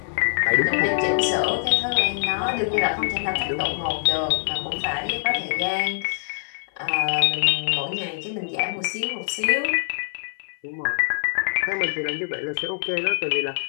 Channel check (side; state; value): right; silent; 63 dB below the other